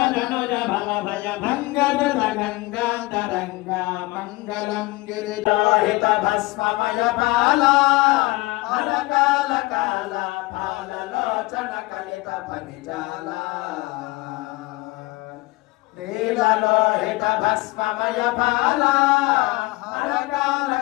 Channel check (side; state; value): right; quieter; 22.2 dB